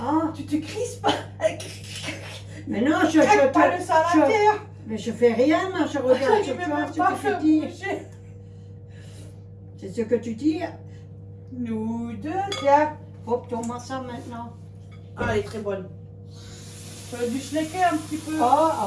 Tu te crispes. mais non, je Craque pas le te... salataire. Mais je fais rien, moi, je regarde Je sur vais toi, même ce pas que faire tu dis. bouger. C'est ce que tu dis. Nous deux, tiens. Hop, tourne-moi ça maintenant. Ah, elle est très bonne. Tu as dû schlecker un petit peu. Oh,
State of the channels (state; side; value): identical; both; correlation 1.00